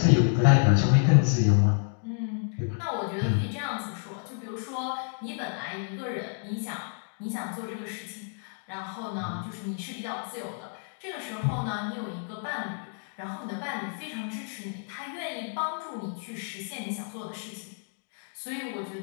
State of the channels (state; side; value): silent; right; 58 dB below the other